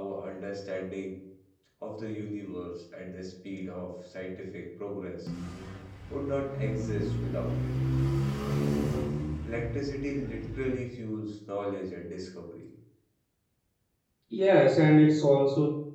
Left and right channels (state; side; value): identical; both; correlation 1.00